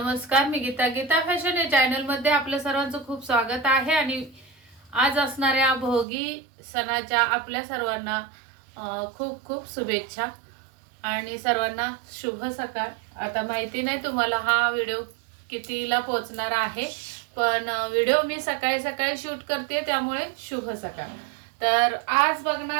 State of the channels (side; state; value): left; drops out; at 6.1 s